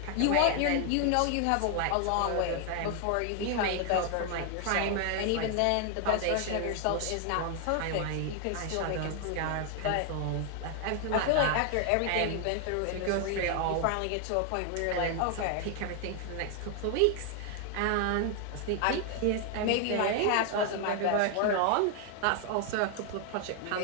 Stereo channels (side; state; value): both; different; correlation 0.00